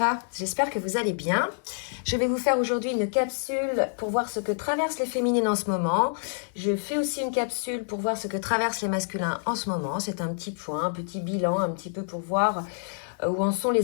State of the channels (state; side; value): silent; right; digital silence